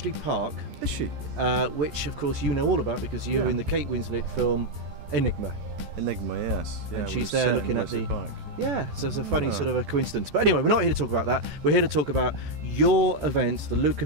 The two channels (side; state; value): left; late; 14 ms